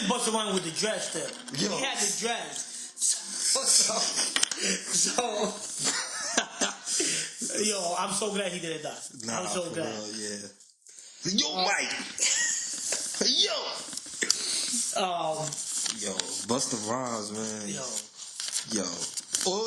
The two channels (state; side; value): identical; both; correlation 1.00